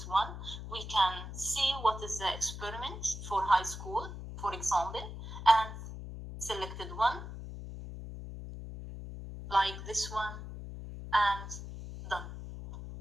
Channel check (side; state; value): left; noise; hum, 9 dB below the sound